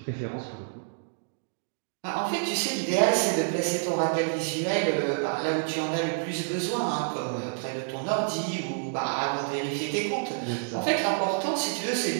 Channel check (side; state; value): left; silent; digital silence